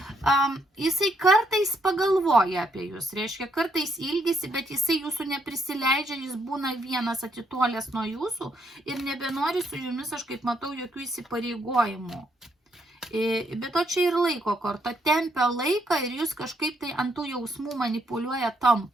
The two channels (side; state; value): both; normal; correlation 0.73